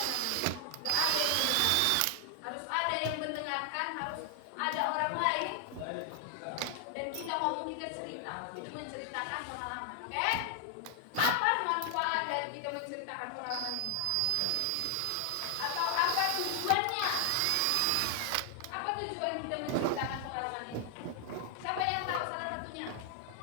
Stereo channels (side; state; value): both; different; correlation 0.00